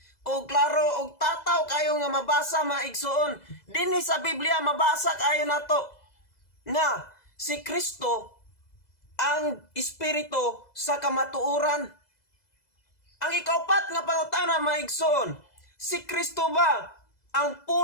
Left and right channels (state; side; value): late; right; 2.0 ms